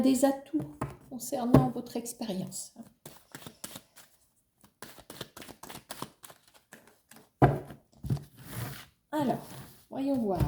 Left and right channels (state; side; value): identical; both; correlation 1.00